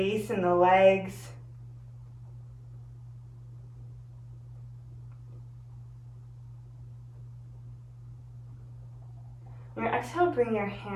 in the legs. On your exhale, bring your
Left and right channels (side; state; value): both; identical; correlation 1.00